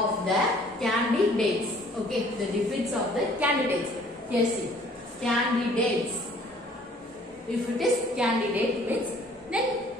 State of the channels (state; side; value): normal; both; correlation 0.56